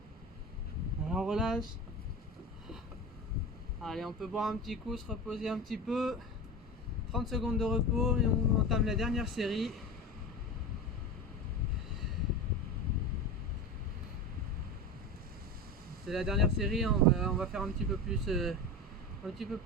Alors on relâche. Allez, on peut boire un petit coup, se reposer un petit peu. 30 secondes de repos et on entame la dernière série. C'est la dernière série, hein. On va faire un petit peu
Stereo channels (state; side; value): normal; both; correlation 0.26